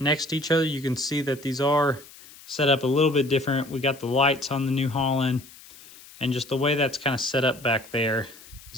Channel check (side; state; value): left; noise; hiss, 21 dB below the sound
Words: to each other, you can see that these are set up a little bit different. We got the lights on the New Holland, and just the way that's kind of set up back there